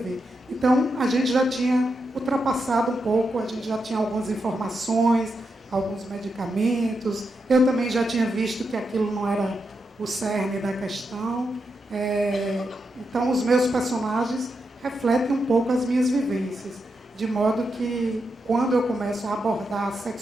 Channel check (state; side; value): normal; both; correlation 0.85